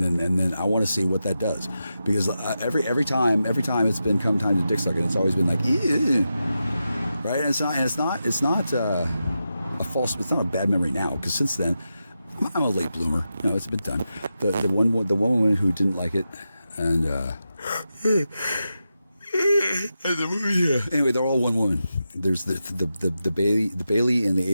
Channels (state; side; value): inverted; both; correlation -0.89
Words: then I want to see what that does, because every time it's been come time to dick sucking, it's always been like, ew. Right? And it's not a false. It's not a bad memory now, because since then. I'm a late bloomer. It's been done. The one woman who didn't like it, and anyway, they're all one woman. There's the Bailey and